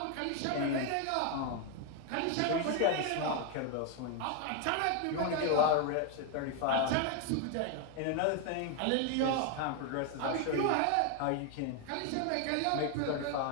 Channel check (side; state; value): both; different; correlation 0.01